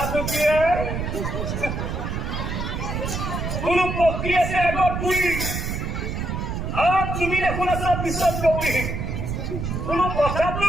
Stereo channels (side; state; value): right; noise; rumble, 3 dB below the sound